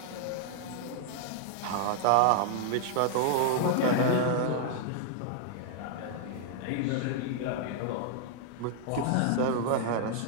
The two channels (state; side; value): different; both; correlation -0.01